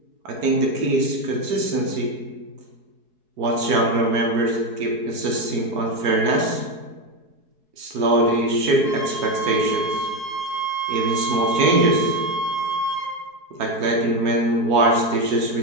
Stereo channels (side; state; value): left; late; 4.7 ms